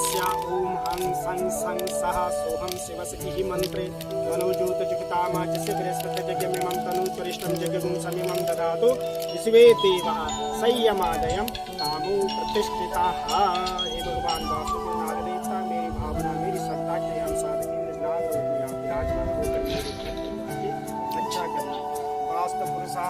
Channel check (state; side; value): identical; both; correlation 1.00